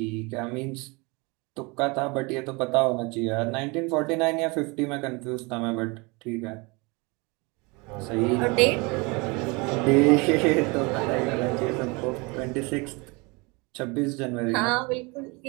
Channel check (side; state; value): left; quieter; 27.5 dB